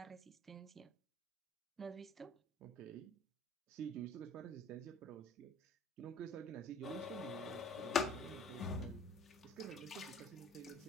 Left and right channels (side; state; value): both; normal; correlation 0.49